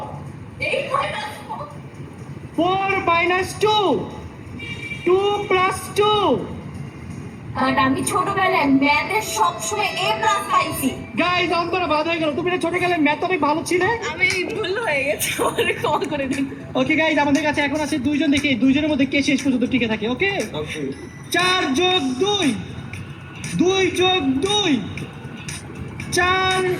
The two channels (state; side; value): identical; both; correlation 1.00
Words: 4 মাইনাস 2 2 প্লাস 2 আর আমি ছোটবেলায় ম্যাথে সবসময় এ প্লাস পাইছি। গাইস অন্তরা বাদ হয়ে গেল। তুমি না ছোটবেলায় ম্যাথ অনেক ভালো ছিলে। আমি ভুল হয়ে গেছে, আমারে ক্ষমা করে দিন। ওকে গাইস আমাদের কাছে এখন আছে দুইজন, দেখি দুইজনের মধ্যে কে শেষ পর্যন্ত টিকে থাকে। ওকে 4 যোগ 2 2 যোগ 2 4